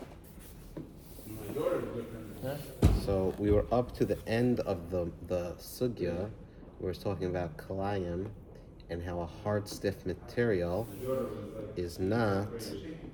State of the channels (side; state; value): both; identical; correlation 1.00